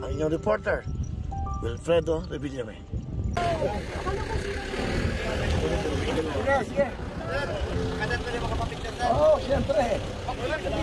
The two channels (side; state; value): both; identical; correlation 1.00